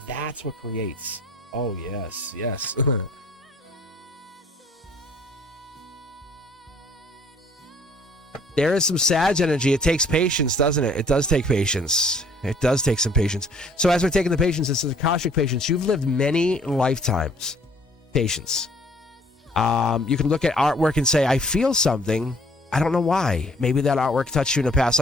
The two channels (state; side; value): normal; both; correlation 0.58